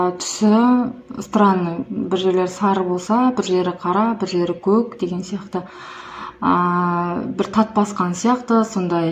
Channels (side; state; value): both; identical; correlation 1.00